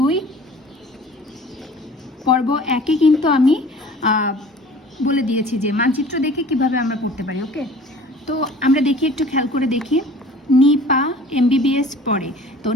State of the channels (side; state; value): both; normal; correlation 0.46